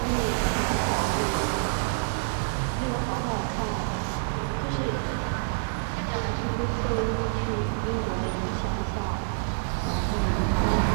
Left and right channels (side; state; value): left; silent; digital silence